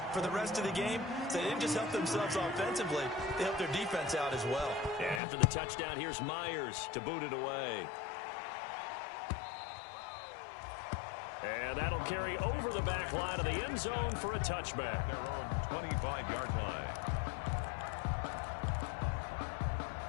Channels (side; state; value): right; drops out; at 5.2 s